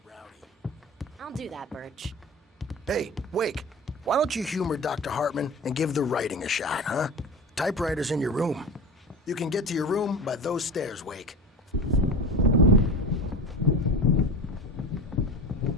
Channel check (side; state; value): both; normal; correlation 0.30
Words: rowdy. I'll do that, Birch. Hey, Wake, why don't you humor Dr. Hartman and give the writing a shot, huh? Typewriter's in your room. You can get to your room by those stairs, Wake.